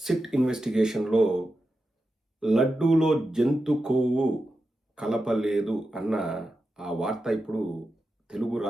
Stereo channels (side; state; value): both; normal; correlation 0.90